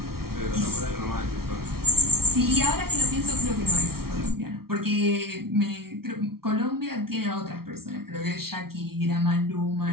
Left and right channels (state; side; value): late; left; 0.94 ms